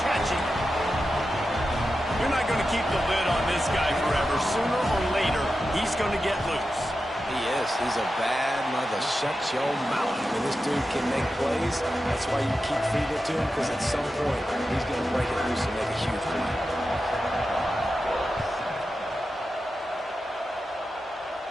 keep the lid on this guy forever. Sooner or later, he's going to get loose. He is. He's a bad mother. Shut your mouth. I mean, this dude can make plays. That's why you keep feeding it to him, because at some point, he's going to break it loose and make a huge play.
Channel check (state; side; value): normal; both; correlation 0.91